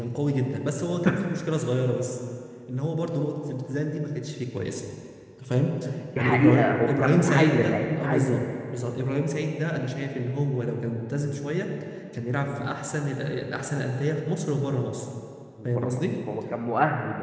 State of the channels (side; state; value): both; identical; correlation 1.00